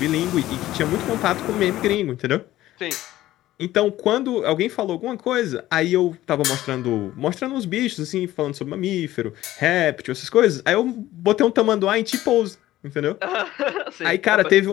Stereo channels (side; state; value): right; quieter; 15.0 dB